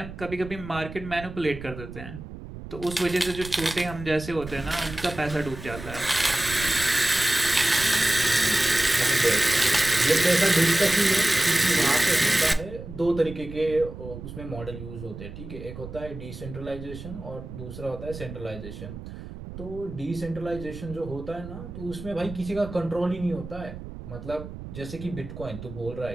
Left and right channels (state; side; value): noise; right; rumble, 12 dB below the sound